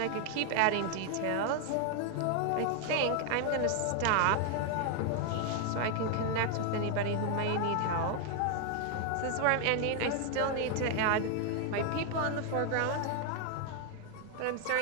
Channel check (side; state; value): both; different; correlation 0.00